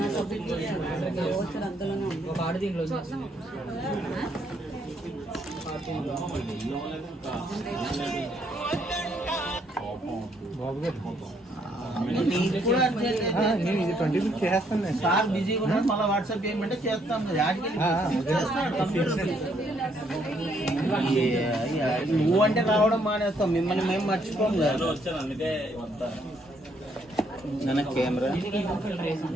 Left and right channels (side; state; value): both; normal; correlation 0.70